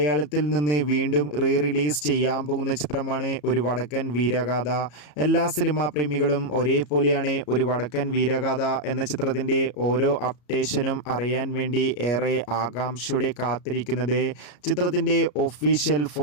നിന്ന് വീണ്ടും റിലീസ് ചെയ്യാൻ പോകുന്ന ചിത്രമാണ് ഒരു വടക്കൻ വീരഗാഥ. എല്ലാ സിനിമാ പ്രേമികളും ഒരേപോലെയാണ് ഒരു വടക്കൻ വീരഗാഥ എന്ന ചിത്രത്തിൻ്റെ ഓരോ അപ്ഡേഷനും അറിയാൻ വേണ്ടി ഏറെ ആകാംക്ഷയോടെ കാത്തിരിക്കുന്നത്. ചിത്രത്തിൻ്റെ ഒഫീഷ്യൽ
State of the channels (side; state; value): right; late; 34 ms